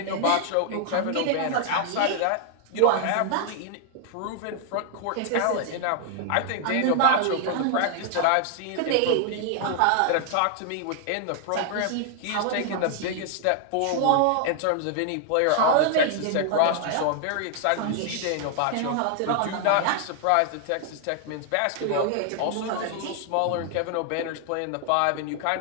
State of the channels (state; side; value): different; both; correlation 0.00